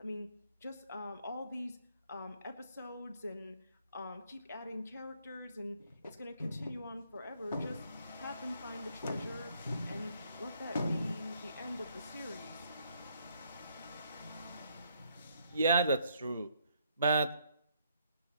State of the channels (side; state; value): both; inverted; correlation -0.70